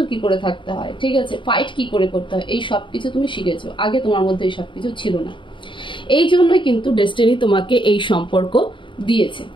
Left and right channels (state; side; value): late; right; 0.24 ms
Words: কি করে থাকতে হয়, ঠিক আছে, ফাইট কি করে করতে হয়, এই সব কিছু তুমি শিখেছো। আগে তোমার মধ্যে এই সব কিছু ছিল না। এই জন্যই কিন্তু ডেস্টিনি তোমাকে এই সম্পর্ক দিয়েছে।